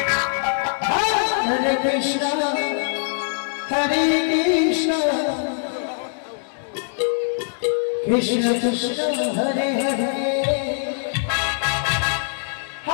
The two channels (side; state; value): right; silent; digital silence